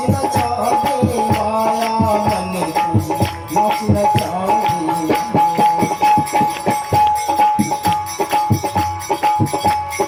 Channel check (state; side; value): identical; both; correlation 1.00